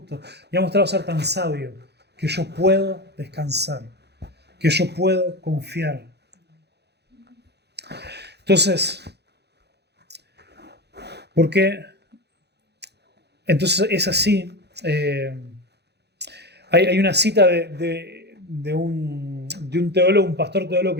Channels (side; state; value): left; late; 0.48 ms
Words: y ha mostrado ser tan sabio, que yo puedo descansar, que yo puedo confiar. Entonces, ¿por qué? Entonces es así. Hay una cita de un teólogo, un pastor teólogo